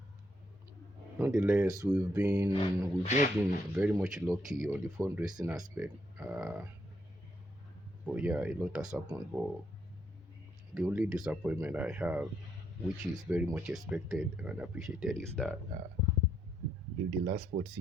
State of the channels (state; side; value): normal; both; correlation 0.75